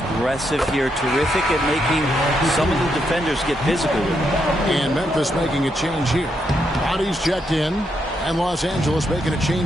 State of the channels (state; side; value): normal; both; correlation 0.79